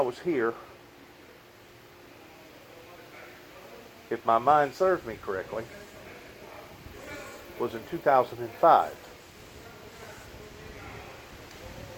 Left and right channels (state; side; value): identical; both; correlation 1.00